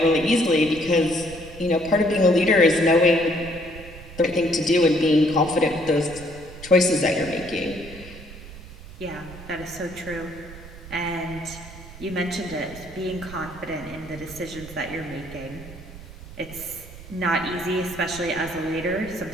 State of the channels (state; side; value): noise; right; rumble, 16 dB below the sound